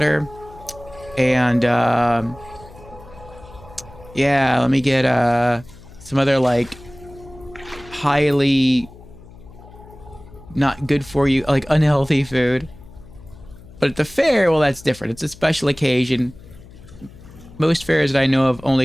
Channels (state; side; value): noise; left; hum, 20 dB below the sound